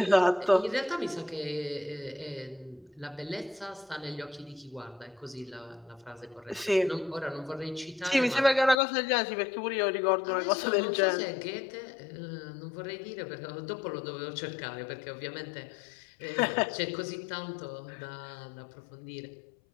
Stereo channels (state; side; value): drops out; right; at 8.8 s